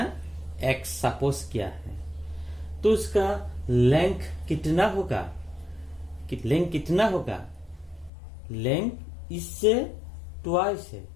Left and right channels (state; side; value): drops out; right; at 8.1 s